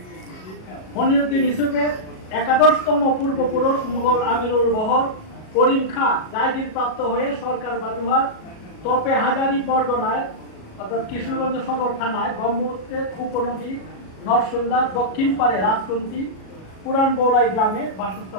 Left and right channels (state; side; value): late; right; 37 ms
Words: মনিরুদ্দিন ইউসুফের একাদশতম পূর্বপুরুষ মুঘল আমিরুল বহর করিম খাঁ জায়গির প্রাপ্ত হয়ে সরকার বাজুহাট তপে হাজারি পরগনায় অর্থাৎ কিশোরগঞ্জ সদর থানায় ব্রহ্মপুত্রের উপনদী নরসুন্দার দক্ষিণ পারে রাজকুন্তি পুরান বৌলাই গ্রামে